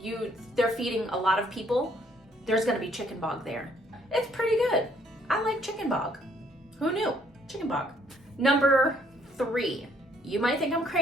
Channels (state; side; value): normal; both; correlation 0.65